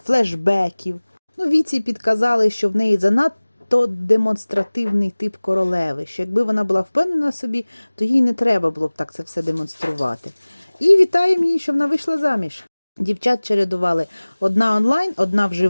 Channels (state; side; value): inverted; both; correlation -1.00